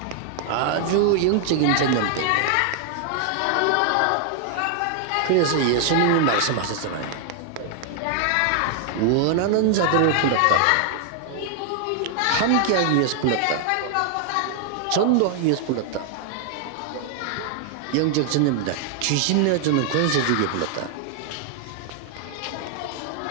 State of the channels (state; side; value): different; both; correlation 0.00